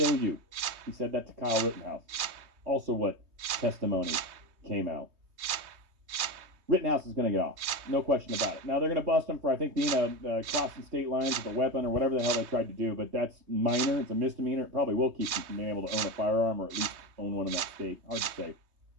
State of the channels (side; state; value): left; late; 3.2 ms